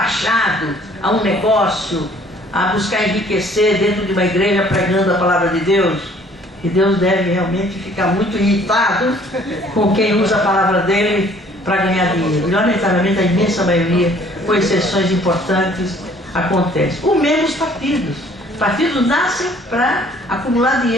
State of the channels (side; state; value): both; normal; correlation 0.57